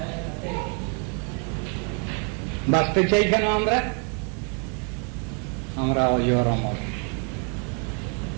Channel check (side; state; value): left; quieter; 38.4 dB